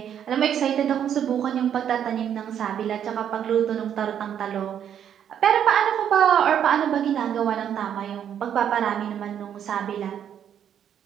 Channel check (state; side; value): quieter; left; 9.2 dB